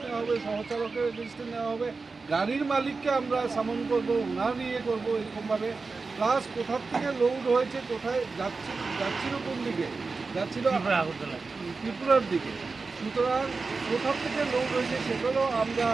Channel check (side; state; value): left; quieter; 4.2 dB